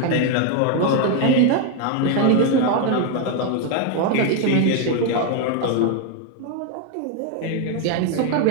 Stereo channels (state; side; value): different; both; correlation 0.01